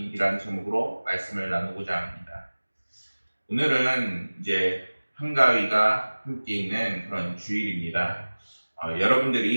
제목으로 말씀을 나누고자 합니다. 오늘은 이제 한가위가 함께 있는 그런 주일입니다.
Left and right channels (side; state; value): both; inverted; correlation -1.00